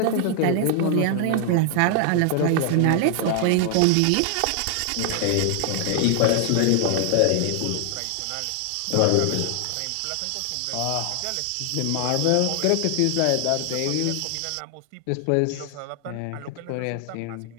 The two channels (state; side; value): different; both; correlation 0.00